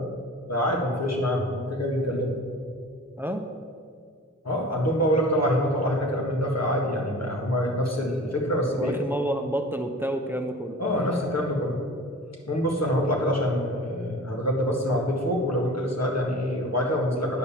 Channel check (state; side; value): normal; both; correlation 0.40